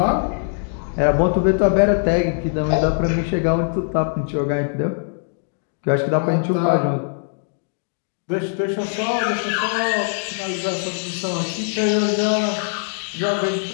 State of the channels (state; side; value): silent; right; digital silence